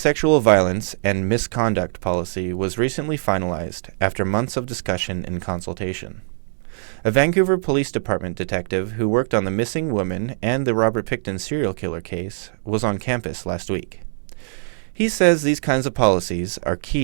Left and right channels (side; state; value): left; silent; digital silence